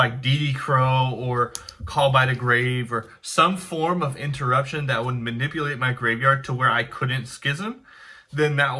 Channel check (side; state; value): both; identical; correlation 1.00